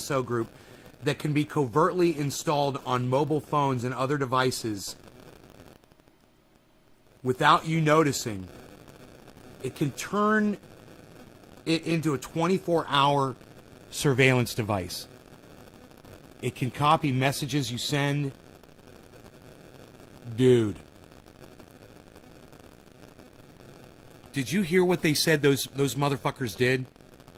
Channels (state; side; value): identical; both; correlation 1.00